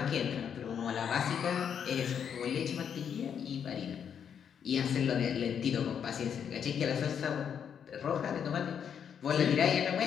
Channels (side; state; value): right; quieter; 7.9 dB